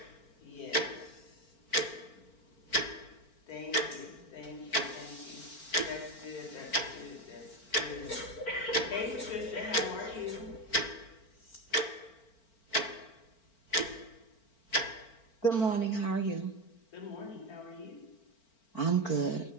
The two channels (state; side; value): late; right; 4.4 ms